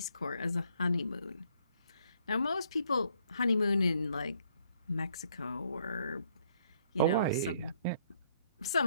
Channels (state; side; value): inverted; both; correlation -0.68